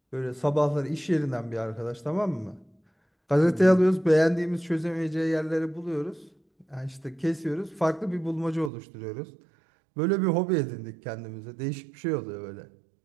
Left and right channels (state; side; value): drops out; left; at 8.7 s